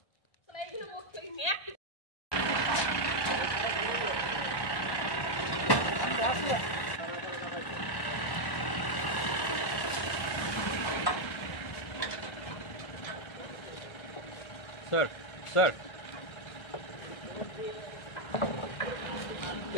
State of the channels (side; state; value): right; late; 1.2 ms